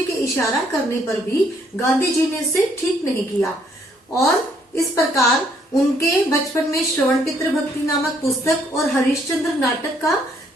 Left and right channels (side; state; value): both; normal; correlation 0.68